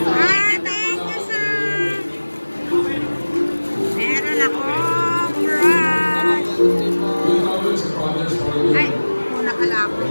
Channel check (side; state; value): both; inverted; correlation -1.00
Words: you, sir. Meron akong brush. Ay, muna pala ako.